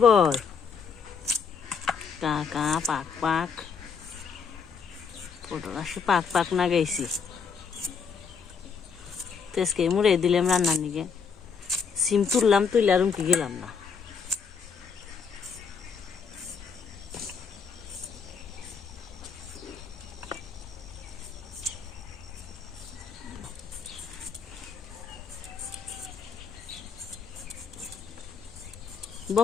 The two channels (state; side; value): quieter; right; 6.0 dB